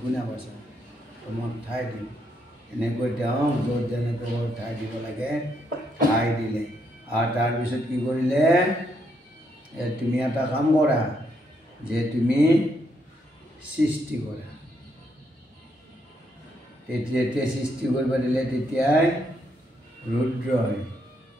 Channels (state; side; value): normal; both; correlation 0.76